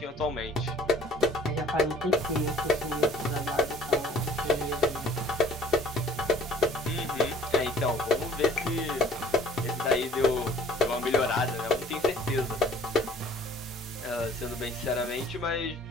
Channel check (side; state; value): both; normal; correlation 0.51